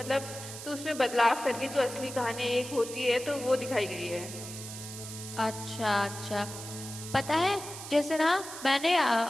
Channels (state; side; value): noise; right; hiss, 11 dB below the sound